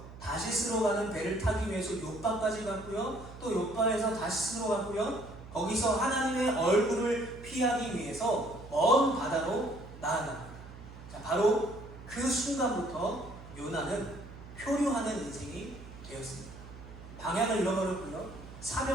다시스로 가는 배를 타기 위해서 요빠까지 갔고요, 또 요빠에서 다시스로 갔고요, 거기서 하나님의 얼굴을 피하기 위해서 먼 바다로 나아갑니다. 자, 바로 그 순간부터 요나는 표류하는 인생이 되었습니다. 방향을 잃어버렸고요,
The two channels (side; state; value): right; noise; hum, 16 dB below the sound